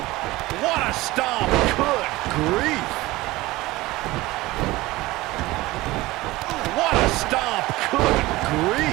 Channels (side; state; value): left; quieter; 19.3 dB